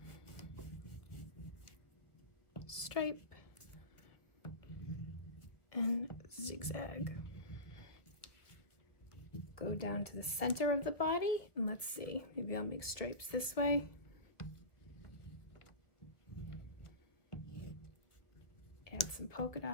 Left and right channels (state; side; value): late; right; 1.2 ms